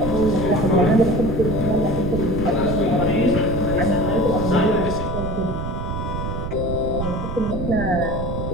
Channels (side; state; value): right; noise; rumble, 4 dB below the sound